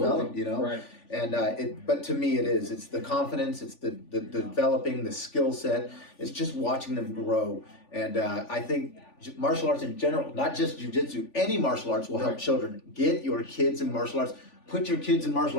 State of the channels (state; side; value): late; right; 3.4 ms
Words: you know. Right. And but to me, it's the confidence, it's the developing the skill set. It's just watching them grow. And I think martial arts in general, not just jiu-jitsu, any martial arts will help children. Get your kids in martial arts. Put your kids in